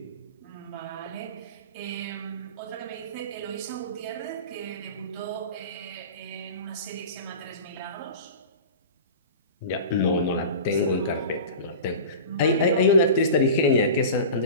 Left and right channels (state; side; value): inverted; both; correlation -0.34